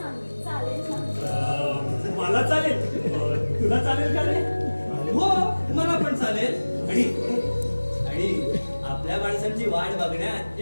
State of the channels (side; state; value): both; inverted; correlation -1.00